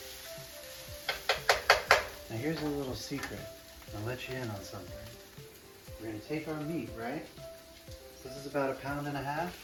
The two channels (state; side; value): identical; both; correlation 1.00